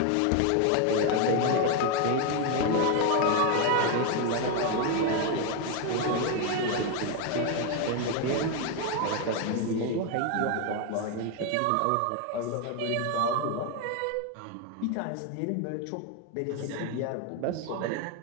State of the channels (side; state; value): both; different; correlation 0.01